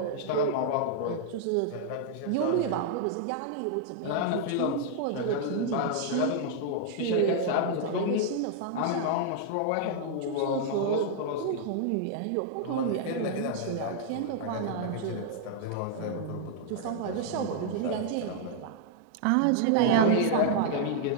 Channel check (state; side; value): different; both; correlation -0.01